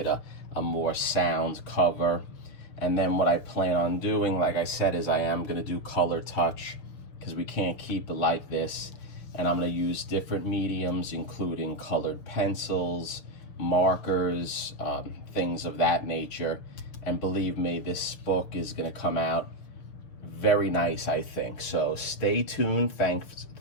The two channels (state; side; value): late; right; 6.6 ms